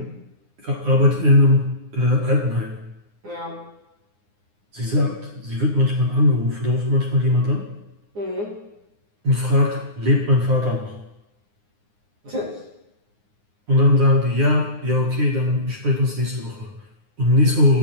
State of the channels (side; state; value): left; late; 9.7 ms